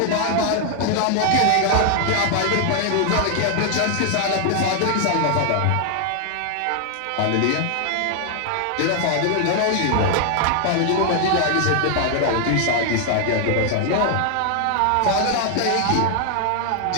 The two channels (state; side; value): different; both; correlation 0.00